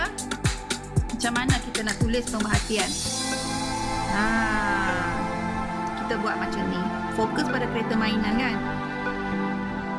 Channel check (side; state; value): both; identical; correlation 1.00